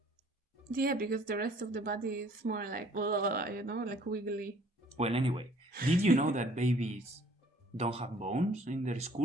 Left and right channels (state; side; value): normal; both; correlation 0.57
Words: Yeah, because the rest of the body is more like, like wiggly. Well, anyway, did you know that babies don't have bones in their